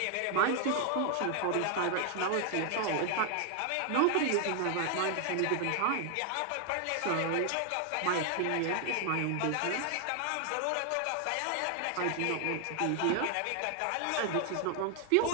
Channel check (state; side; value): different; both; correlation 0.00